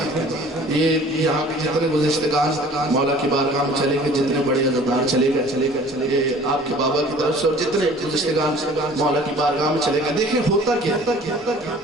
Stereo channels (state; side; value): normal; both; correlation 0.49